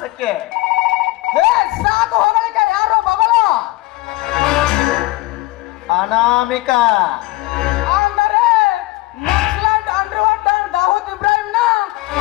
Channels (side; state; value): right; quieter; 20.1 dB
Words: ಸಾಕು ಹೊಗಳಿಕೆ, ಯಾರು ಮಗಳು ಅನಾಮಿಕ ಅಂದರೆ ನಕ್ಸಲೈಟ್ ಅಂಡರ್ವರ್ಲ್ಡ್ ದಾವೂದ್ ಇಬ್ರಾಹಿಂನ